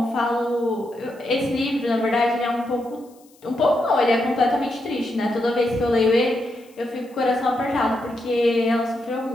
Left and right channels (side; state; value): left; noise; hiss, 30 dB below the sound